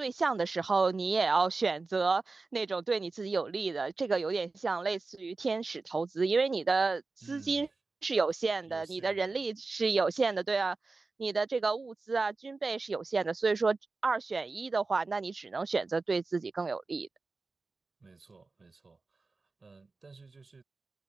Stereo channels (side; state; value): left; quieter; 3.8 dB